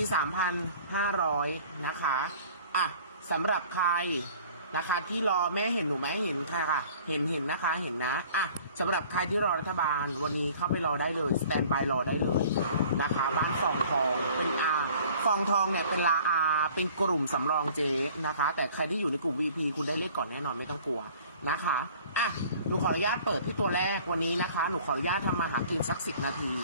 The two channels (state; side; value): inverted; both; correlation -0.50